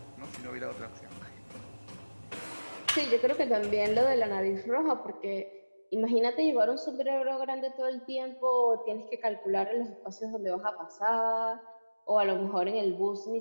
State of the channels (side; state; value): both; inverted; correlation -1.00